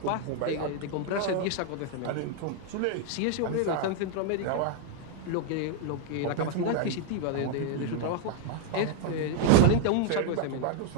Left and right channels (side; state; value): both; different; correlation 0.00